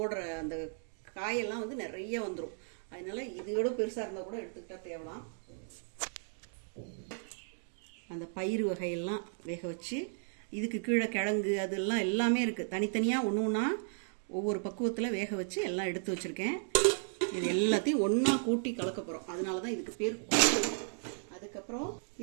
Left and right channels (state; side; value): silent; left; digital silence